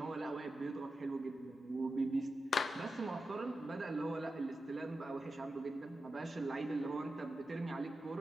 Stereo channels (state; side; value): normal; both; correlation 0.91